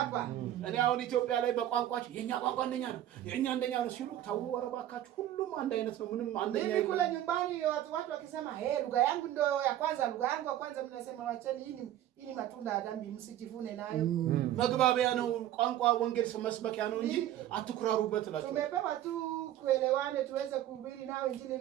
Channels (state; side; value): quieter; left; 12.5 dB